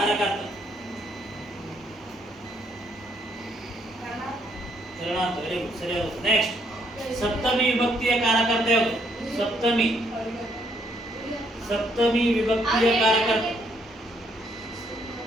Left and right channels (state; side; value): normal; both; correlation 0.70